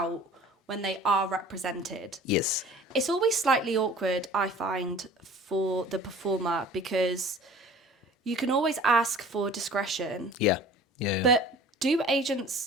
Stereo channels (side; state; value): both; normal; correlation 0.46